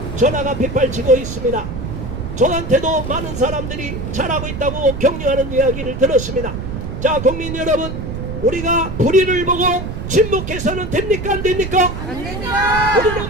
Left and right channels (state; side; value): noise; right; rumble, 6 dB below the sound